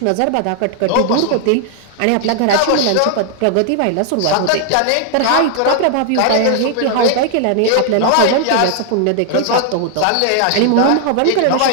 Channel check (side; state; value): both; different; correlation 0.00